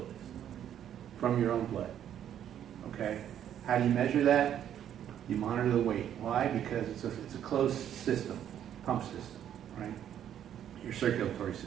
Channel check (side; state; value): left; quieter; 10.1 dB